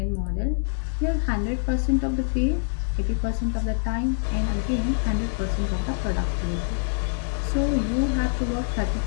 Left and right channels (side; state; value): right; silent; 62 dB below the other